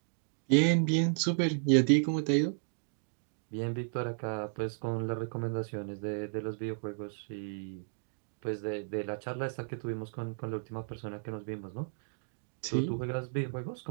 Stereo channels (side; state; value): left; silent; digital silence